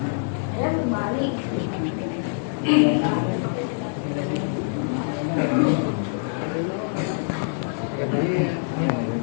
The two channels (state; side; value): silent; right; digital silence